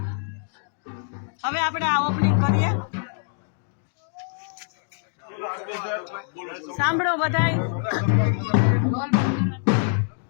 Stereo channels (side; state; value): right; silent; digital silence